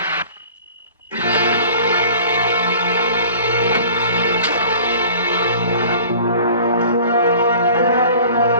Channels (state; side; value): inverted; both; correlation -0.46